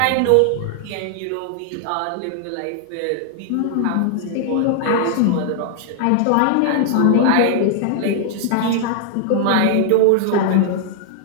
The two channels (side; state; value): both; different; correlation -0.01